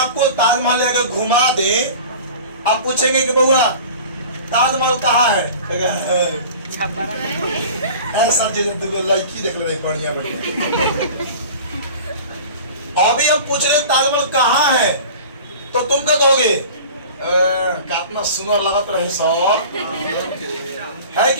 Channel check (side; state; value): both; inverted; correlation -0.40